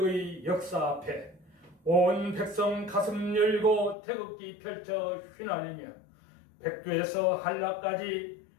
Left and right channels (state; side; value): drops out; right; at 4.0 s